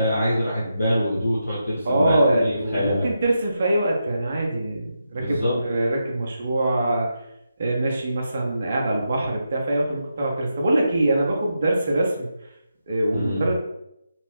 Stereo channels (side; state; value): both; inverted; correlation -0.85